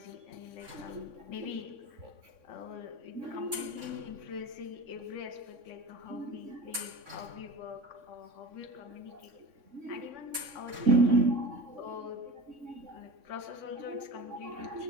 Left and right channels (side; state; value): left; late; 3.6 ms